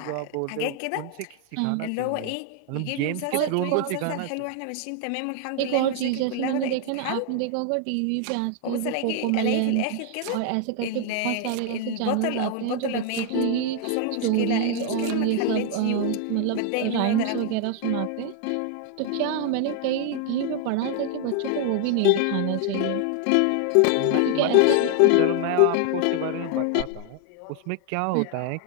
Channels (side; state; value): both; different; correlation 0.00